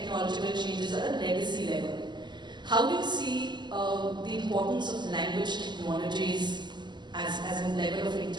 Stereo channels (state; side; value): late; left; 0.21 ms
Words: changes at a legacy level. How do you see the importance of language technologies as a level of